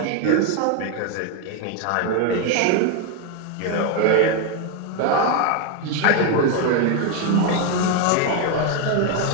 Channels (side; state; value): both; different; correlation 0.02